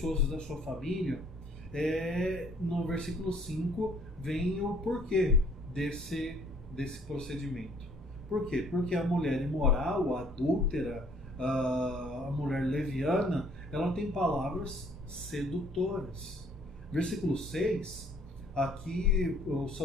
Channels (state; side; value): normal; both; correlation 0.60